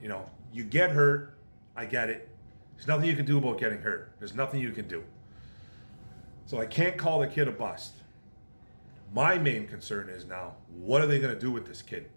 You get hurt, I get it. There's nothing you can do about getting hurt. There's nothing you can do. So I can't call the kid a bust. My main concern is now, what are they going to do with this kid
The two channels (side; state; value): both; inverted; correlation -1.00